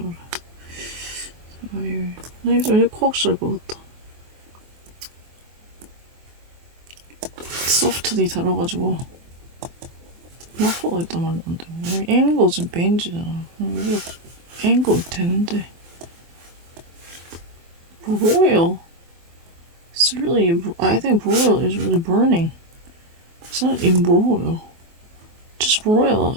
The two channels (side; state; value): left; late; 24 ms